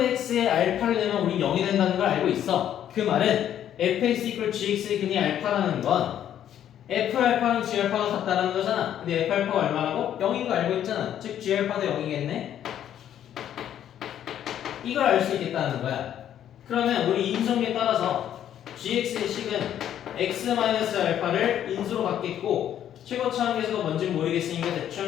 알파를 내면 우리 0이 된다는 걸 알고 있어. 그 말은 fx equal gx의 근이 알파라는 건 f 알파랑 g 알파가 같다라는 거잖아. 근데 f 알파가 얼마라고? 0인 거 알고 있잖아. 즉 g 알파도 0이겠네. 이걸 알 수 있겠다는 거야. 그러면 우리 인수정리에 따라서 gx의 식은 x-알파를 인수로 갖겠고 최고차항 계수가 뭔지 모르겠으니까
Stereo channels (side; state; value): right; quieter; 10.5 dB